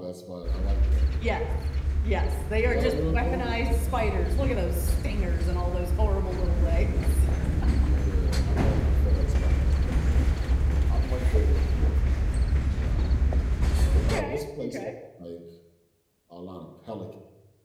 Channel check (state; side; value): identical; both; correlation 1.00